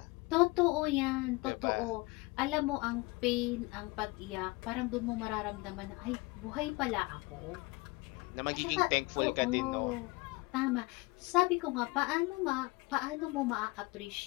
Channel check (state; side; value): quieter; right; 24.4 dB